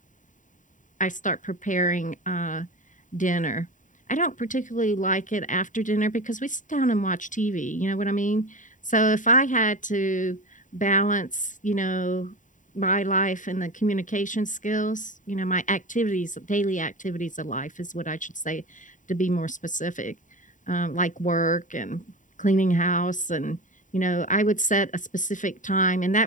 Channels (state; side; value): late; right; 0.37 ms